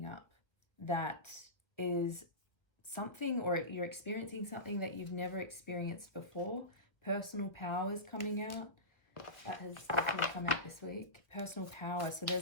up that is something, or you're experiencing something that you've never experienced before. Personal power is coming out. That has definitely come out this week. Personal power. So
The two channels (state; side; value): late; right; 1.1 ms